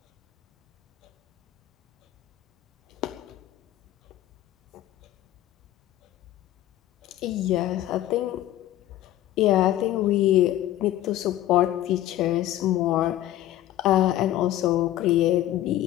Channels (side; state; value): right; quieter; 13.7 dB